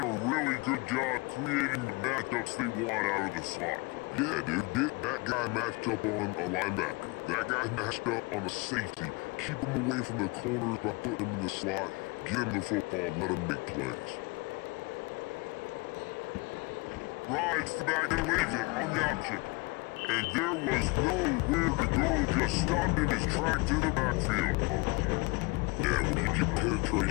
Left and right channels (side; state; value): right; quieter; 26.9 dB